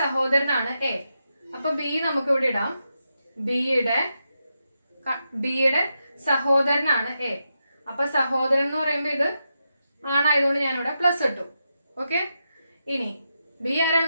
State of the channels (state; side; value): inverted; both; correlation -0.86